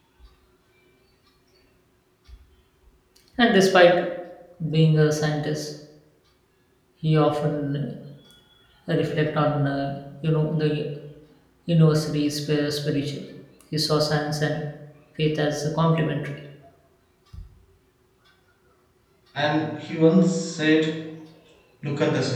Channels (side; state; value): both; identical; correlation 1.00